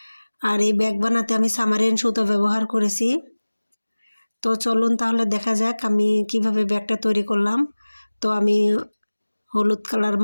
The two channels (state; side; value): inverted; both; correlation -1.00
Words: আর এই ব্যাগ বানাতে আমি সামারিয়ান সুতো ব্যবহার করেছি। তো চলুন তাহলে দেখা যাক আমি কিভাবে ব্যাগটা তৈরি করলাম। তো আমি হলুদ কালার,